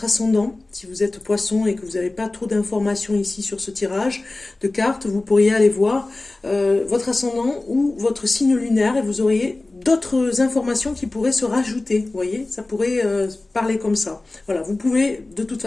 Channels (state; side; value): quieter; right; 3.0 dB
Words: ascendant. Si vous êtes poisson et que vous n'avez pas trop d'informations ici sur ce tirage de cartes, vous pourriez aller voir votre ascendant ou votre signe lunaire et vous auriez d'autres informations qui pourraient se rajouter. Vous voyez, ça pourrait parler comme ça. Voilà, vous pouvez de toute